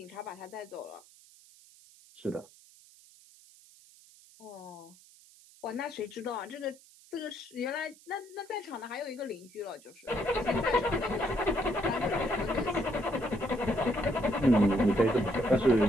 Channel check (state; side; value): noise; right; hiss, 24 dB below the sound